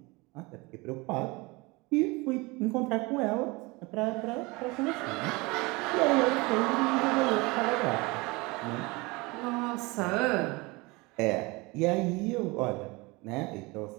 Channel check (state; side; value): quieter; left; 24.6 dB